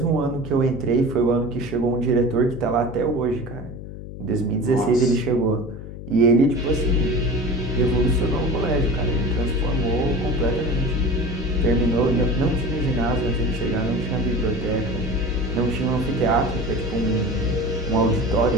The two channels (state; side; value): noise; left; hum, 11 dB below the sound